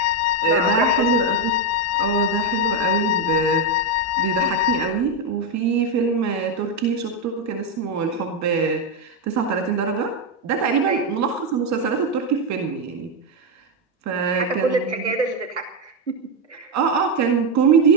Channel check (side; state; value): both; normal; correlation 0.06